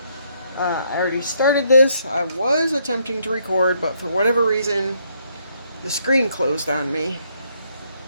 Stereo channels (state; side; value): inverted; both; correlation -0.72